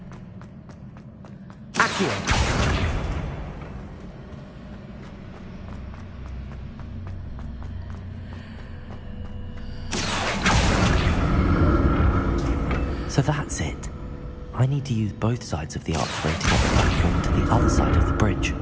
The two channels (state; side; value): identical; both; correlation 1.00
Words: Accio! So that's it. I need to use both sides of the archway to get the platform to the other side of the bridge.